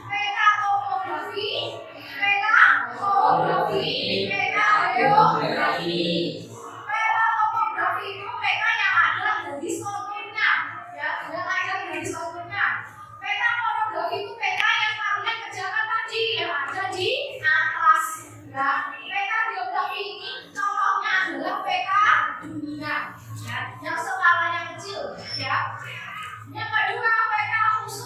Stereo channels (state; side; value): identical; both; correlation 1.00